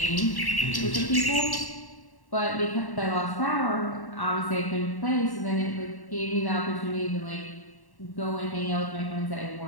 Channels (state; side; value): late; right; 1.1 ms